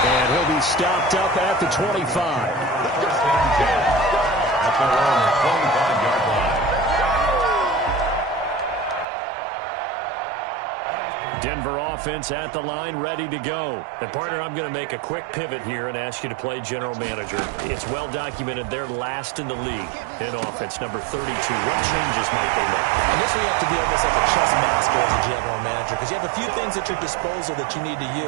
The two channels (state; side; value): drops out; left; at 9.1 s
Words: And he'll be stopped up at the 25. At the 25-yard line. Denver offense at the line, ready to go. And, partner, I'm going to make a quick pivot here and ask you to play general manager. It's well documented they're last in the league in offense, number 32. What changes might they make? And this where you have to be almost like a chess master as a general manager, because you have a few things at your disposal that you need to